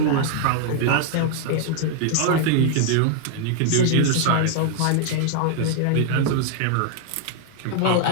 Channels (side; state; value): both; different; correlation 0.00